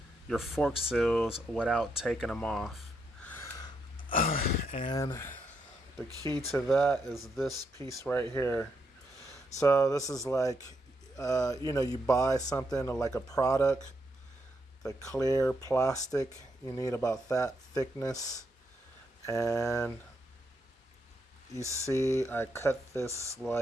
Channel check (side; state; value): both; normal; correlation 0.79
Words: your fork seals without taking them off. And the key to that is this piece right here. So this is like, you buy something like a product, the clear plastic, you need about that thickness. And you see I cut this